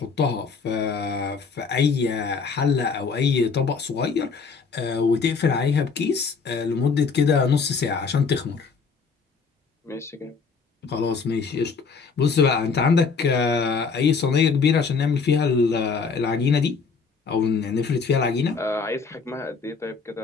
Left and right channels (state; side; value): quieter; right; 5.2 dB